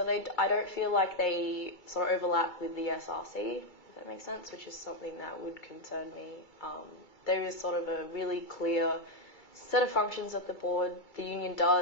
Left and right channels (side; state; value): right; late; 2.3 ms